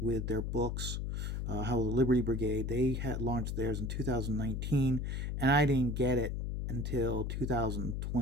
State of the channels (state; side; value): noise; left; hum, 2 dB below the sound